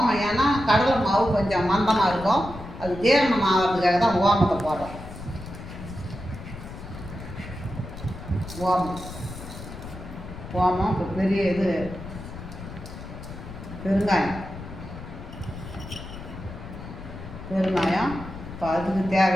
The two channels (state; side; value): noise; left; rumble, 12 dB below the sound